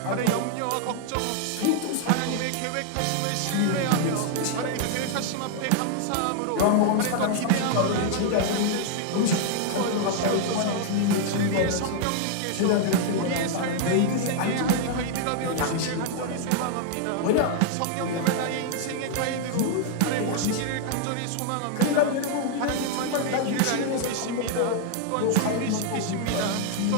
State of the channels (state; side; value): different; both; correlation 0.00